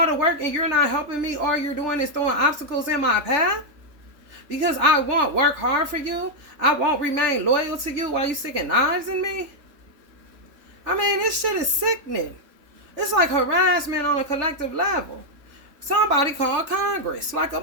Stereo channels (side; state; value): left; late; 3.4 ms